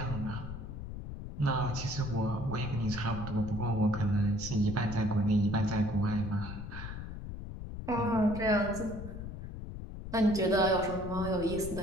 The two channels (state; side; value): noise; left; rumble, 8 dB below the sound